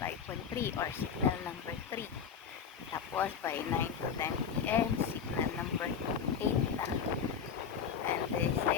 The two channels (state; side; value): quieter; right; 7.0 dB